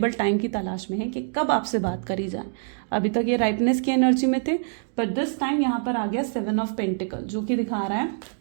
टाइम की तलाश में है कि कब आपसे बात करी जाए। अभी तक ये राइपनेस की एनर्जी में थे, पर दिस टाइम यहाँ पर आ गया 7 ऑफ पेंटिकल, जो कि दिखा रहा है,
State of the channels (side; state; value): left; silent; digital silence